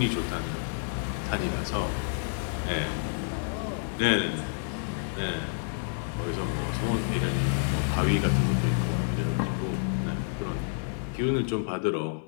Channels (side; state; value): right; silent; digital silence